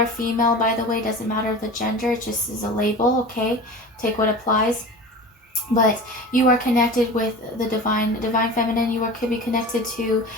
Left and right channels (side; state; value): both; normal; correlation 0.34